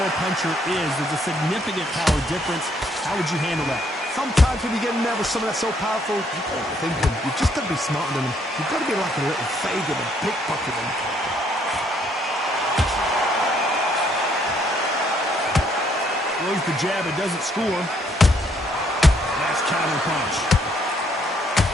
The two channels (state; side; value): normal; both; correlation 0.69